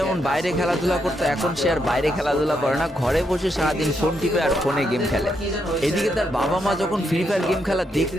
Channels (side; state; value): both; normal; correlation 0.79